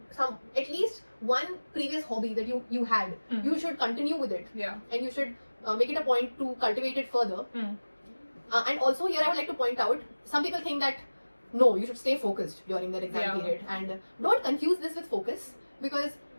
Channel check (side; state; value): both; inverted; correlation -1.00